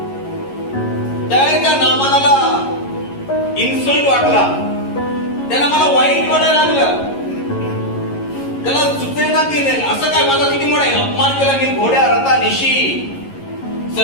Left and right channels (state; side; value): late; right; 11 ms